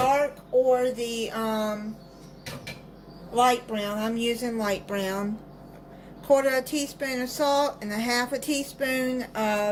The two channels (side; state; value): both; identical; correlation 1.00